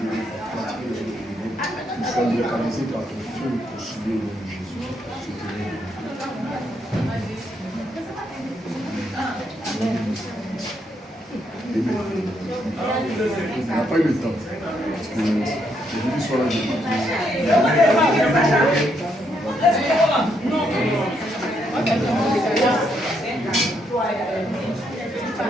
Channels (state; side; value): normal; both; correlation 0.76